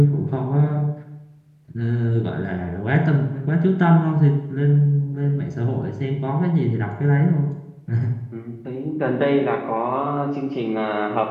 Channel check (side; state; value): both; identical; correlation 1.00